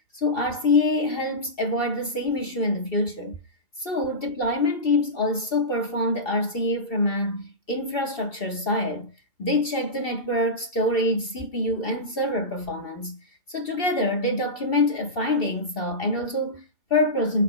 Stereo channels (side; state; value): right; late; 2.7 ms